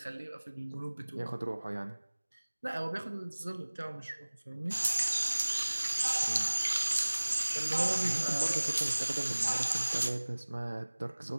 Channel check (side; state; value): both; inverted; correlation -1.00